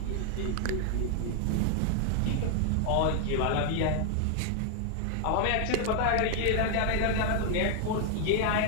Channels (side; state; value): both; different; correlation 0.00